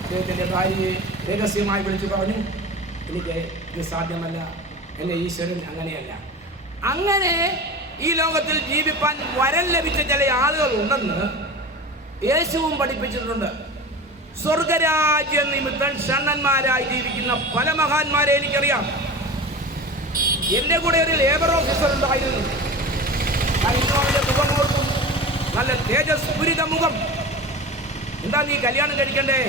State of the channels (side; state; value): both; normal; correlation 0.32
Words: അദ്ദേഹത്തിൻ്റെ ഭാര്യയെ രഹസ്യമായി വിളിച്ചു പറഞ്ഞു, എനിക്ക് ഇത് സാധ്യമല്ല, എൻ്റെ ഈശ്വരൻ അങ്ങനെയല്ല. അങ്ങനെ ഈ ലോകത്തിൽ ജീവിപ്പാൻ വരം ലഭിച്ച ചില ആളുകൾ ഉണ്ടെന്ന് യേശുവും പഠിപ്പിച്ചിട്ടുണ്ട്. സ്വർഗരാജ്യ നിമിത്തം ഷണ്ണന്മാരായി ജീവിക്കുന്ന പല മഹാന്മാരെ എനിക്കറിയാം. എൻ്റെ കൂടെ ഒരു ലേബർ ഓഫീസർ ഉണ്ടായിരുന്നു. അവൻ്റെ മുഖം ഓർക്കും, നല്ല തേജസ്ഫുരിത മുഖം. എന്താ നീ കല്യാണം കഴിക്കണ്ടേ?